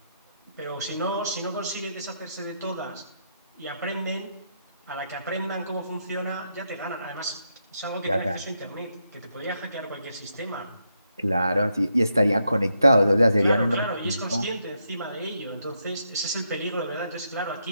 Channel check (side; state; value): both; inverted; correlation -0.80